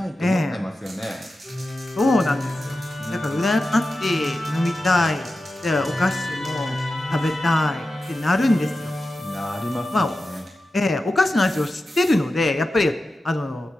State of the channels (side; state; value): both; normal; correlation 0.92